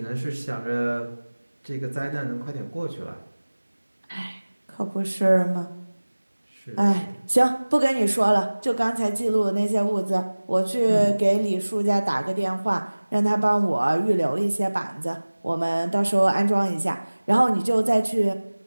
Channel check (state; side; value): inverted; both; correlation -1.00